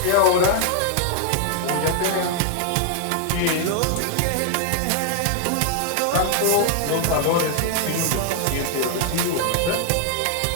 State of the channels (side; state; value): both; different; correlation 0.00